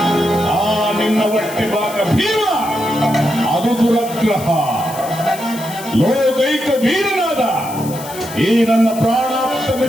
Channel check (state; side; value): noise; left; hiss, 14 dB below the sound